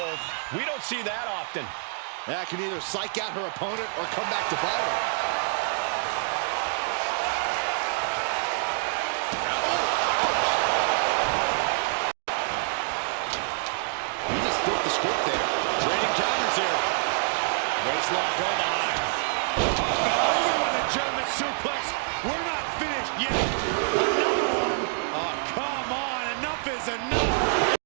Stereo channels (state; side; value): silent; left; 60 dB below the other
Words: We don't see that often. That can either psych out her opponent or come back to bite her. Waistlock go behind. Over with a German suplex. We're not finished yet. Another one. Oh, come on. Enough is enough.